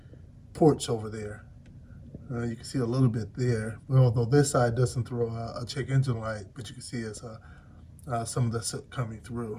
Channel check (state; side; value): identical; both; correlation 1.00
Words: ports over there. You can see a little bit there, although this side doesn't throw a check engine light, but you can see it's some of the soot coming